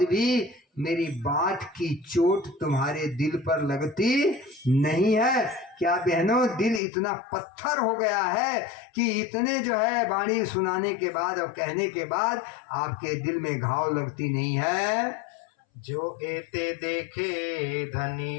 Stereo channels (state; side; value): drops out; right; at 6.8 s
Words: भी मेरी बात की चोट तुम्हारे दिल पर लगती नहीं है? क्या बहनों, दिल इतना पत्थर हो गया है कि इतने जो है वाणी सुनाने के बाद और कहने के बाद आपके दिल में घाव लगती नहीं है? जो एते देखे